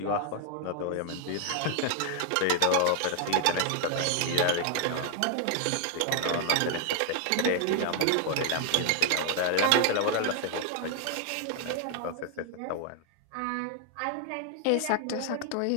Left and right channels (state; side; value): different; both; correlation 0.00